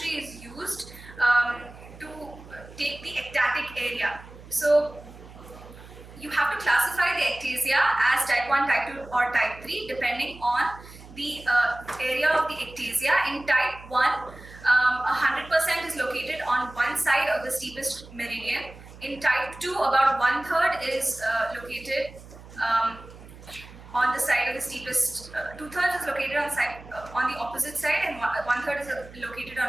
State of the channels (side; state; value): right; noise; hum, 18 dB below the sound